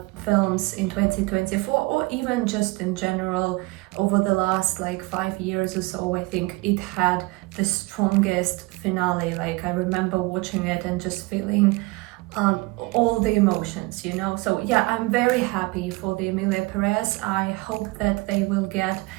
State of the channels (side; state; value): left; quieter; 24.0 dB